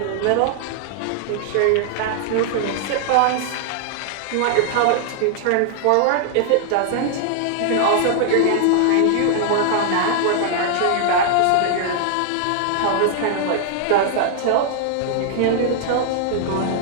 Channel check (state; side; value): different; both; correlation -0.01